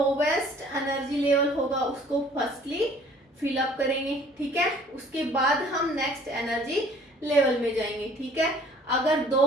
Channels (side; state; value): both; normal; correlation 0.54